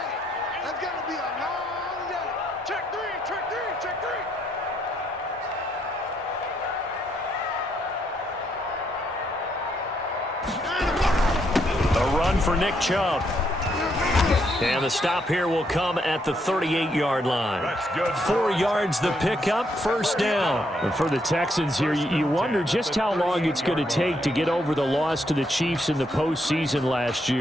For Nick Chubb. And the stop here will come at the 38-yard line. 4 yards the pickup, 1st down. And for the Texans here, you wonder just how long it's going to take to get over the loss to the Chiefs in the postseason last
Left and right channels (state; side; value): normal; both; correlation 0.75